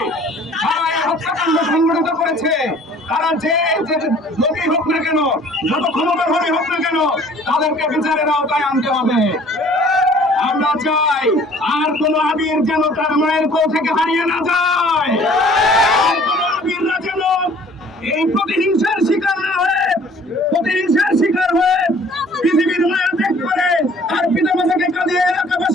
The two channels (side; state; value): both; normal; correlation 0.53